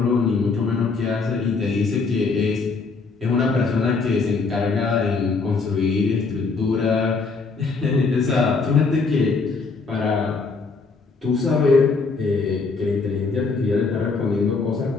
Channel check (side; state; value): right; quieter; 4.4 dB